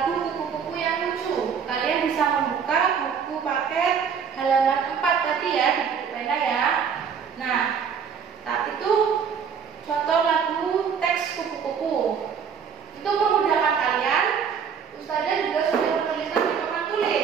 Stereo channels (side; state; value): left; quieter; 6.9 dB